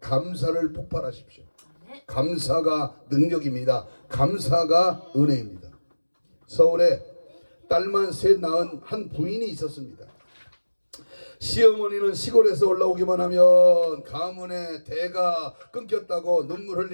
폭발하십시오. 감사가 능력입니다. 감사가 은혜입니다. 서울에 딸만 셋 낳은 한 부인이 있었습니다. 시어머니는 시골에서 올라오기만 하면 가문의 대가 끊겼다고 눈물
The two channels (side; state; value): both; inverted; correlation -1.00